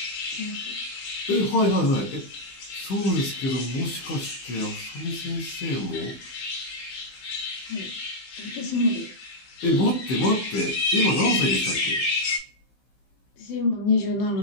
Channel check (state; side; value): late; right; 15 ms